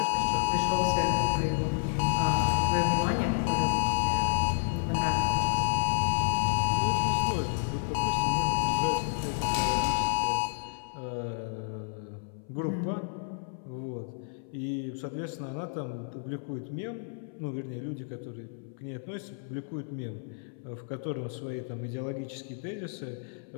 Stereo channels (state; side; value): silent; right; 58 dB below the other